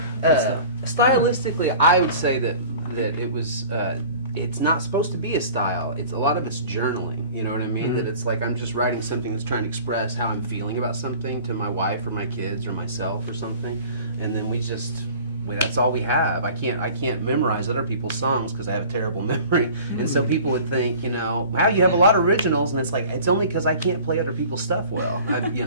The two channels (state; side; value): inverted; both; correlation -0.44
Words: Stylistically, I would say that it was. It's not supposed to be a style. A lot of it's journaling. You know what I mean? That it's like I'm just writing something that's trying to express how I'm feeling about something to my wife or my kids or myself or something, and then that's all we have. I can't memorize other people's songs because I have a terrible memory, and so people would think, wow, you have a lot of originals, and it's like it's only because I can't play other people's stuff well.